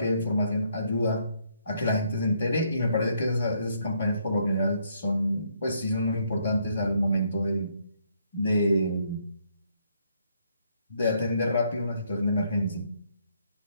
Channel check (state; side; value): inverted; both; correlation -0.71